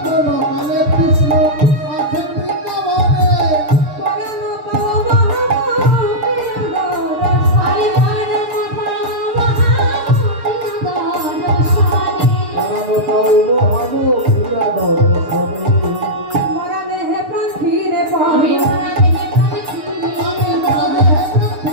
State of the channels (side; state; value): left; late; 6.7 ms